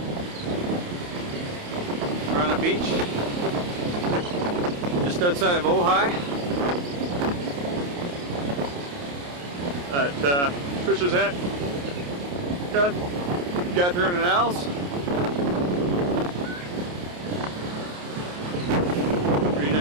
We're on a beach just outside of Ojai at Trisha's aunt Catherine and Al's.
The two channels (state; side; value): late; left; 28 ms